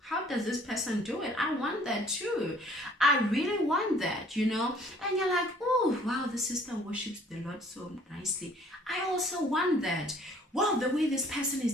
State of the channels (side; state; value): both; normal; correlation 0.56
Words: does this person do it? I want that too. I really want that, you know. And you're like, oh wow, the sister worships the Lord so nicely. I also want that. Wow, the way this person